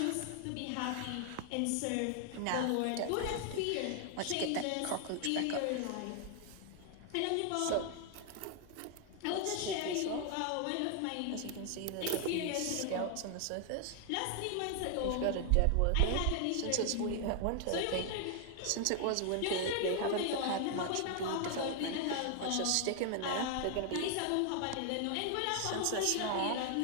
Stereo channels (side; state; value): both; different; correlation 0.00